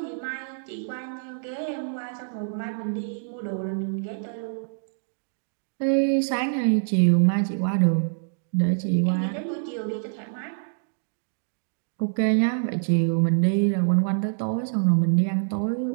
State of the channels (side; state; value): left; silent; digital silence